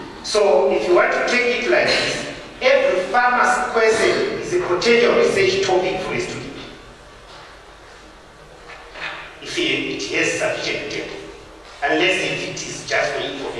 So if you want to take it like this, every farmer's question is a potential research topic for a student. If it has sufficient data, unless if it is just for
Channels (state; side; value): identical; both; correlation 1.00